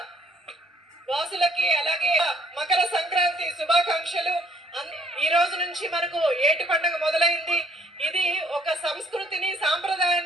వాసులకి అలాగే మకర సంక్రాంతి శుభాకాంక్షలు. ఈ రోజు నుంచి మనకు ఏటి పండుగ మొదలైంది. ఇది ఒక సంస్కృతిని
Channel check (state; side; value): normal; both; correlation 0.64